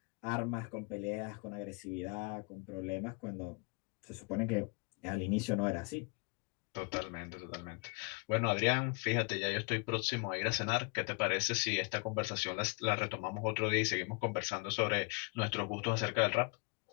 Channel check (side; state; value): right; quieter; 31.3 dB